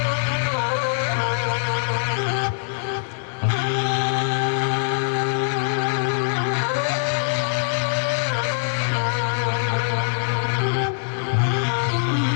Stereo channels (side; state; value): right; silent; digital silence